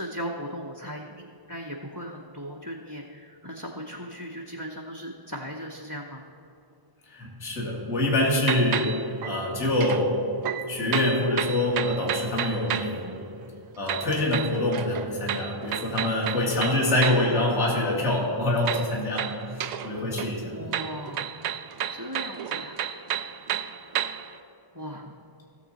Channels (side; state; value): left; late; 1.0 ms